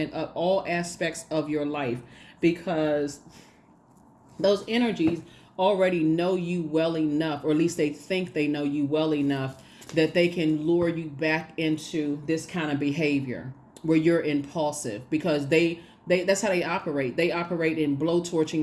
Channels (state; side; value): identical; both; correlation 1.00